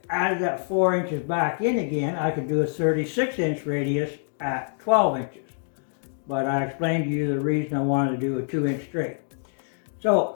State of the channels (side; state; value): right; silent; digital silence